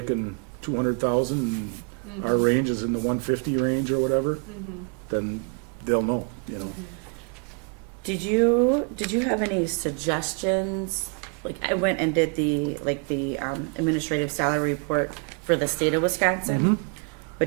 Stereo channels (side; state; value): left; quieter; 38.9 dB